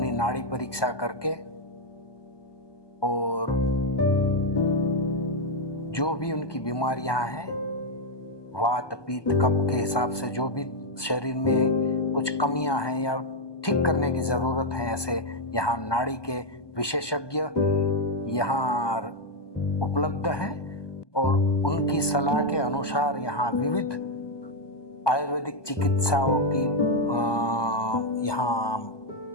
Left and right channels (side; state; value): right; late; 1.2 ms